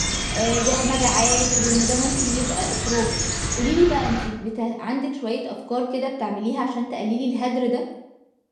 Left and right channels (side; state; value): both; identical; correlation 1.00